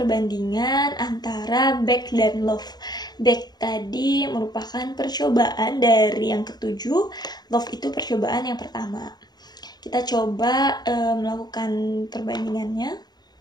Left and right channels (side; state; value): right; late; 0.20 ms